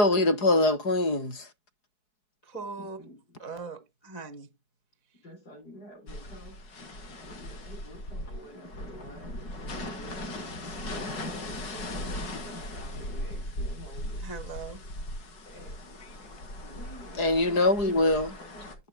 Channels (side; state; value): right; late; 4.7 ms